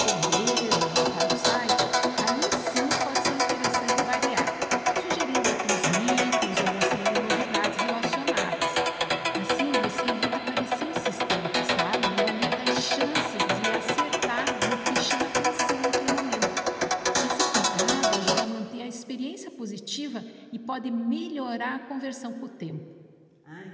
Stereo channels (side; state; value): both; identical; correlation 1.00